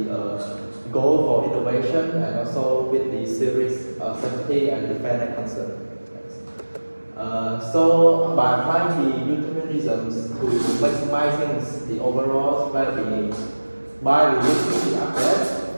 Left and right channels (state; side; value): inverted; both; correlation -1.00